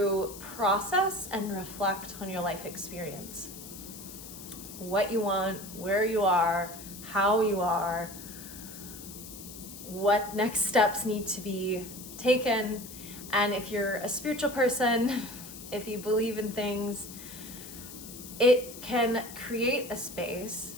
process and reflect on your life experience. What you want, where you are, how you are, what next steps need to be taken. And if you're a spiritual person, if you believe in things, it can create a space,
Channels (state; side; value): noise; left; hiss, 13 dB below the sound